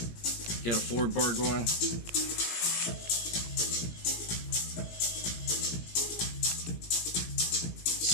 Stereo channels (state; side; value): late; right; 17 ms